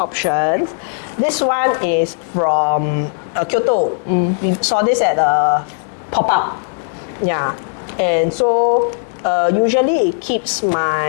options. This one is from Kyoto. We saw this at a pop-up. Yeah, and so usually it keeps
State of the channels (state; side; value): silent; right; digital silence